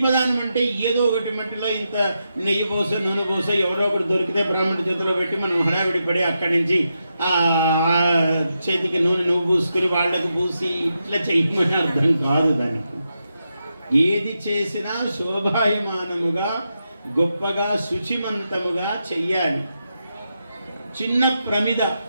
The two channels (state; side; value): inverted; both; correlation -0.86